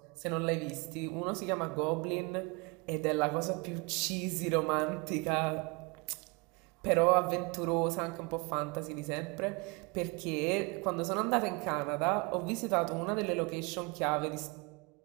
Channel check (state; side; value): quieter; left; 29.0 dB